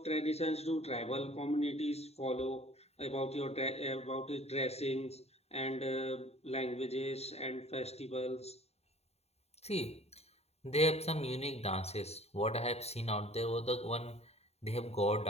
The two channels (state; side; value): late; right; 0.30 ms